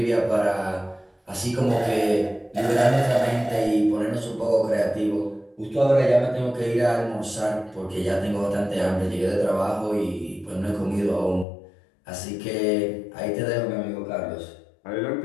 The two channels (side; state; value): right; drops out; at 11.5 s